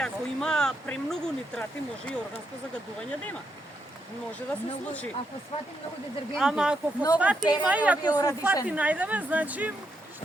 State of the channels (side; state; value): both; normal; correlation 0.80